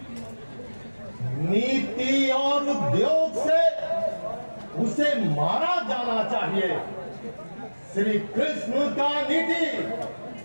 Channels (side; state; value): both; inverted; correlation -1.00